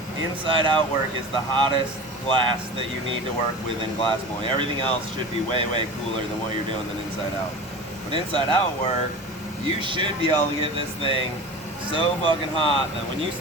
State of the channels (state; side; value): normal; both; correlation 0.33